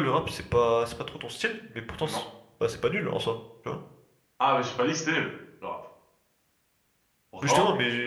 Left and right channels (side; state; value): both; identical; correlation 1.00